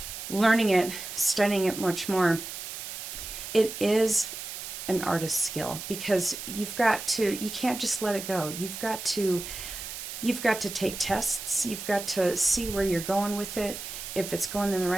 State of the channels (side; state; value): right; noise; hiss, 8 dB below the sound